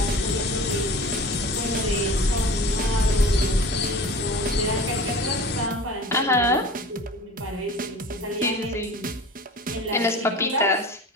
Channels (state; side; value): normal; both; correlation 0.38